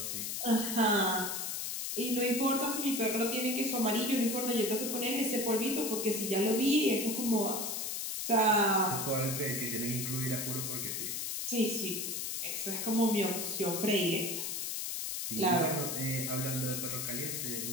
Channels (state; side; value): noise; left; hiss, 3 dB below the sound